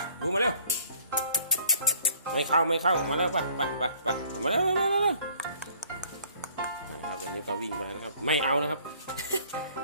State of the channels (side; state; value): both; inverted; correlation -0.58